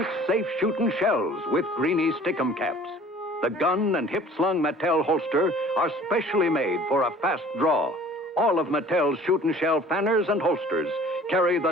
safe shooting shells with greeny stickum caps. The gun and hip-slung Mattel holster are specially made for a fast draw. All of Mattel's shooting shell fanners and holsters carry the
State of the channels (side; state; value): both; normal; correlation 0.49